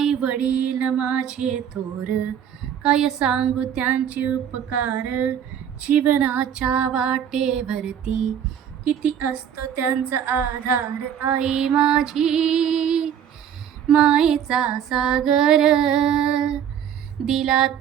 वडील माझे थोर, काय सांगू त्यांचे उपकार. जीवनाच्या वाटेवरती किती असतो त्यांचा आधार. आई माझी मायेचा सागर दिला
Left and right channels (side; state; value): left; quieter; 9.0 dB